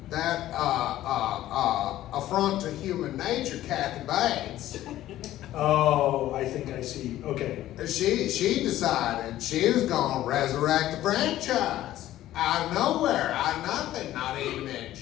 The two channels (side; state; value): right; quieter; 14.0 dB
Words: that affront to human nature, Kathy Bates. Oh, I think I see. Okay. She decided she was going to resurrect the franchise out of nowhere, out of nothing, not even in